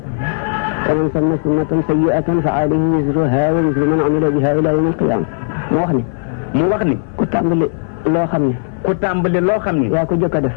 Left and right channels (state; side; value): silent; right; 60 dB below the other